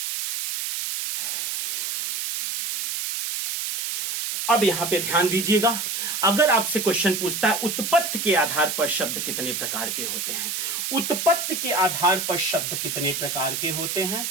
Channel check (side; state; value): right; noise; hiss, 2 dB below the sound